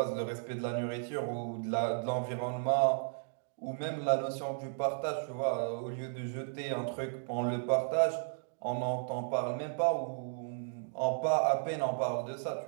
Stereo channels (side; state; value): left; silent; digital silence